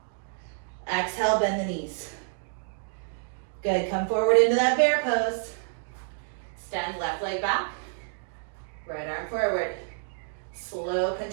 Exhale, bend the knees. Good. Come forward into that bear pose. Extend left leg back. Right arm forward. Slow,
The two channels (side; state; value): left; silent; 59 dB below the other